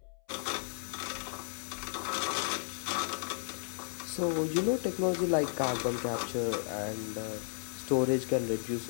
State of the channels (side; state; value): right; silent; 55 dB below the other